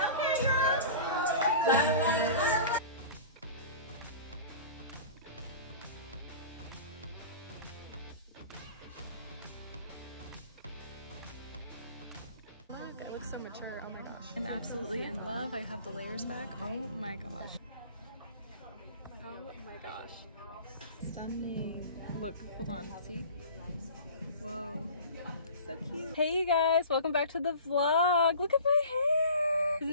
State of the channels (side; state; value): both; inverted; correlation -0.41